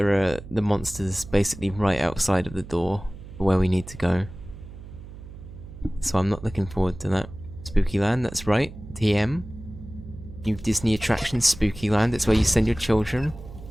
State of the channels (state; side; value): noise; right; hum, 15 dB below the sound